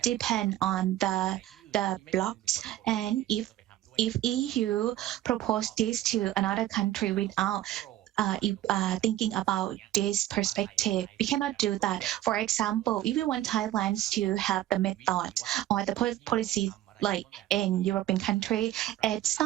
depends on the blocks. And if EU propose this to another country without thinking about this perspective, we cannot do that. For example, if we want Thailand to have the method or the policy like in European country, it's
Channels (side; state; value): left; quieter; 13.8 dB